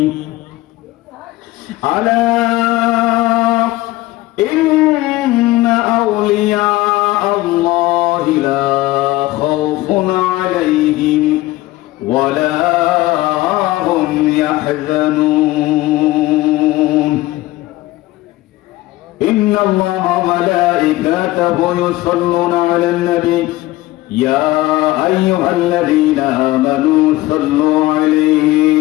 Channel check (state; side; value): quieter; right; 18.0 dB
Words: ألا إن أولياء الله لا خوف عليهم ولا هم يحزنون إن الله وملائكته يصلون على النبي يا أيها الذين آمنوا صلوا